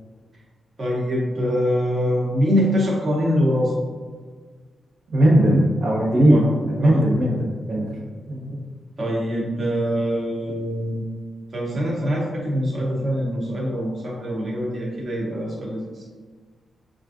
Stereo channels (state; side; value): normal; both; correlation 0.84